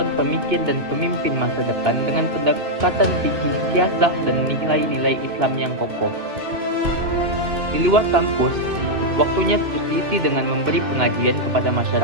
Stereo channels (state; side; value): late; left; 2.6 ms